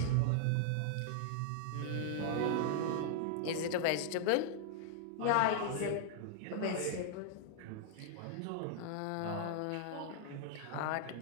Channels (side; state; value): both; different; correlation -0.01